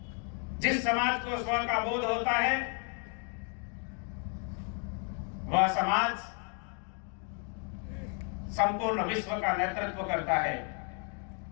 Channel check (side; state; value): right; quieter; 39.6 dB